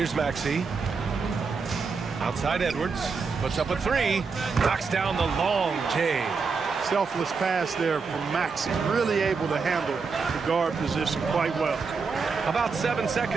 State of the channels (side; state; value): left; quieter; 5.0 dB